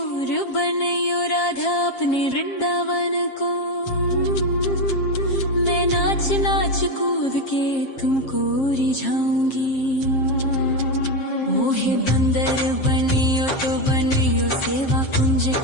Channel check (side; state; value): right; late; 7.5 ms